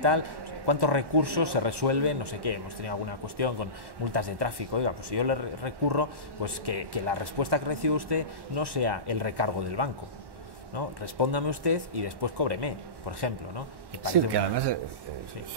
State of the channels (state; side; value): late; left; 1.1 ms